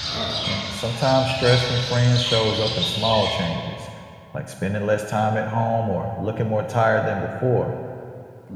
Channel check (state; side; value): identical; both; correlation 1.00